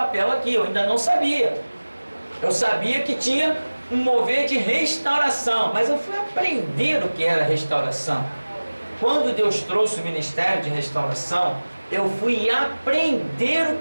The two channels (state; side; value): inverted; both; correlation -1.00